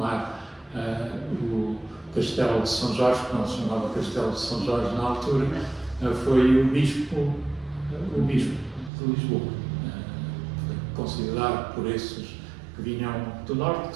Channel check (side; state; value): left; drops out; at 8.9 s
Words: o Castelo de São Jorge, que não se chamava Castelo de São Jorge na altura, foi o Bispo de Lisboa. Foi considerado por esses que vinham do Norte que